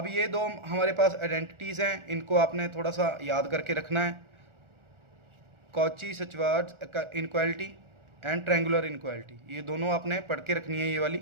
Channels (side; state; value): left; late; 1.4 ms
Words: ये दो हमारे पास आइडेंटिटीज़ हैं, इनको आपने थोड़ा सा याद करके रखना है। Cauchy-Schwarz inequality and triangular inequality, ये दोनों आपने पढ़ के रखनी है। ये वाली